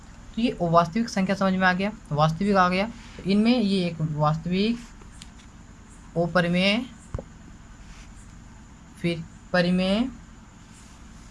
ये वास्तविक संख्या समझ में आ गया, वास्तविक आ गया। तो इनमें ये एक वास्तविक, ओ परिमेय, फिर परिमेय,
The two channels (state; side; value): identical; both; correlation 1.00